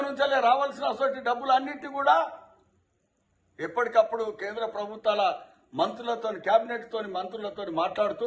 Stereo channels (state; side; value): identical; both; correlation 1.00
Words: నుంచి రావాల్సిన డబ్బులు అన్నింటి కూడా ఎప్పటికప్పుడు కేంద్ర ప్రభుత్వాల మంత్రులతో, కేబినెట్తో మంత్రులతో మాట్లాడుతూ